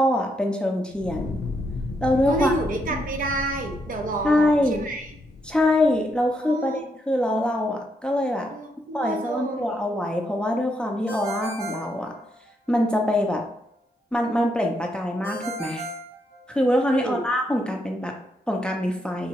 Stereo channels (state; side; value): normal; both; correlation 0.78